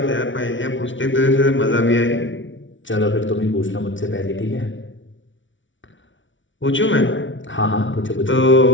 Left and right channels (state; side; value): late; right; 0.56 ms